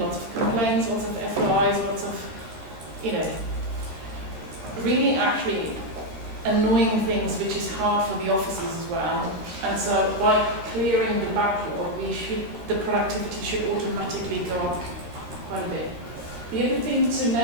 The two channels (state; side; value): late; left; 13 ms